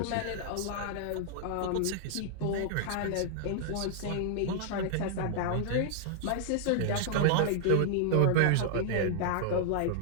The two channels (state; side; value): different; both; correlation -0.01